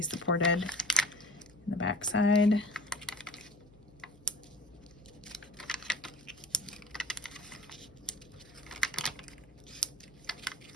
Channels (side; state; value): left; noise; hum, 26 dB below the sound